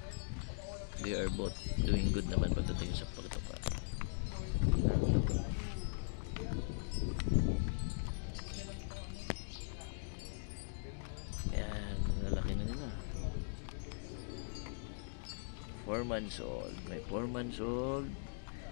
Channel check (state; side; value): silent; right; digital silence